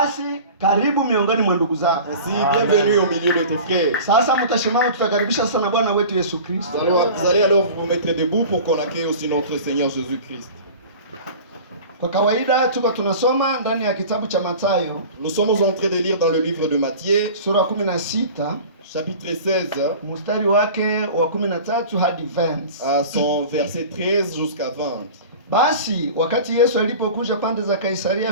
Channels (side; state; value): both; inverted; correlation -0.38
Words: karibu miongoni mwa ndugu zako. Ainsi, bienvenue au milieu de tes frères. Sasa mtashimama, tutakaribisha sana Bwana wetu Yesu Kristo. Vous allez alors vous mettre debout pour qu'on accueille aussi notre Seigneur Jésus-Christ. Kwa kawaida tuko tunasoma ndani ya kitabu cha Mathayo Nous sommes en train de lire dans le livre de Matthieu, sura 16 chapitre 16, mstari wake wa 13 hadi 20. à son verset 13 jusqu'à 20. Basi wakati Yesu alipokuja pande za Kaisaria